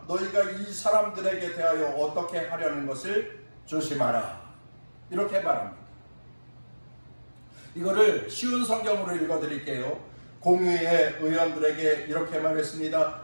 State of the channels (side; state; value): both; inverted; correlation -1.00